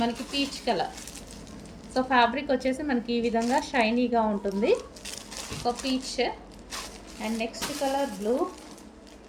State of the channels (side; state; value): both; identical; correlation 1.00